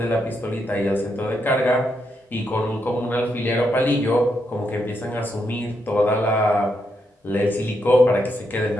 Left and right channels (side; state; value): both; normal; correlation 0.81